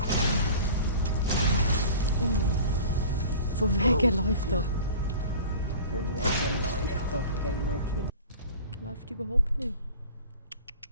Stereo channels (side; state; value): both; inverted; correlation -0.40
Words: Von wegen läuft doch. Von wegen läuft doch, gell, Mogli? Läuft überhaupt nicht.